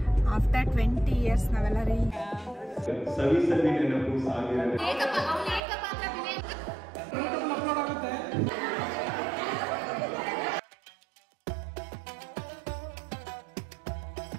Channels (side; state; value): left; drops out; at 5.6 s